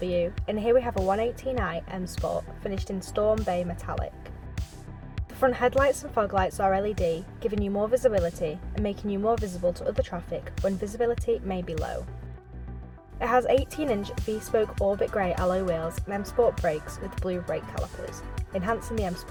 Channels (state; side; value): identical; both; correlation 1.00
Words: and here we have a 118i M Sport finished in Storm Bay Metallic. The front headlights and fog lights are LED, giving you more visibility and making you more visible to other traffic when visibility may be low. It has 18-inch V-spoke Orbit Grey alloy wheels and M Sport brakes with blue brake calipers, enhancing the M